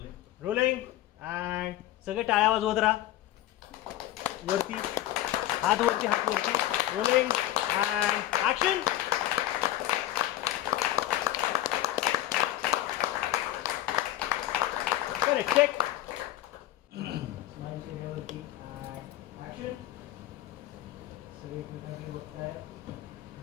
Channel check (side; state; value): right; quieter; 14.2 dB